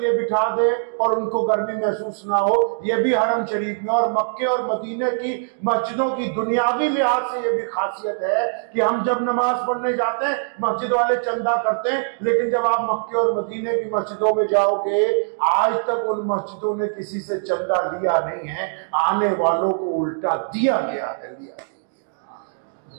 बिठा दे और उनको गर्मी महसूस ना हो। यह भी हरम शरीफ में और मक्के और मदीने की मस्जिदों की दुनियावी लिहाज से यह भी खासियत है कि हम जब नमाज पढ़ने जाते हैं मस्जिद वाले चंदा करते हैं, लेकिन जब आप मक्के और मदीने की मस्जिदों में जाओगे आज तक उन मस्जिदों ने किसी से चंदा लिया नहीं है, आने वालों को उल्टा दिया गया है।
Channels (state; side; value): silent; left; digital silence